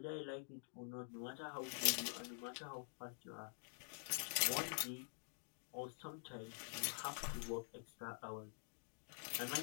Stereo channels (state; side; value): silent; right; digital silence